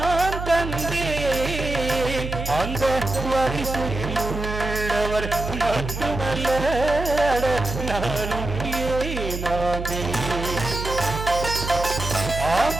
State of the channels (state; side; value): noise; right; hum, 6 dB below the sound